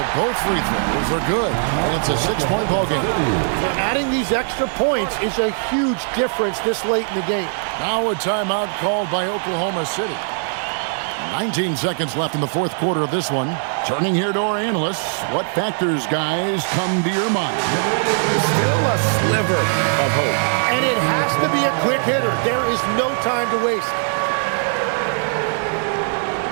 both free throws are good, and it's a 6-point ball game. Adding these extra points is a huge difference this late in the game. Now a timeout called by Oklahoma City. 19 seconds left in the fourth quarter of this one. Turning here to our analysts, what factors, guys, come to your mind? Still a sliver of hope. And it has to be a quick hitter. There is no time to waste.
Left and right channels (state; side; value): silent; left; 66 dB below the other